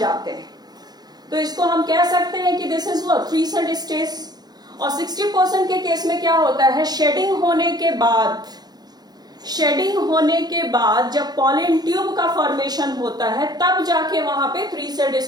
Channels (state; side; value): late; left; 0.19 ms